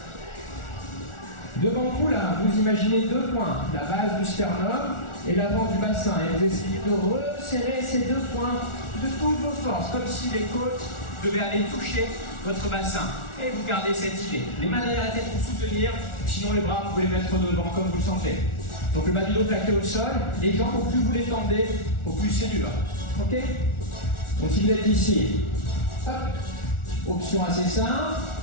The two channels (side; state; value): right; late; 1.4 ms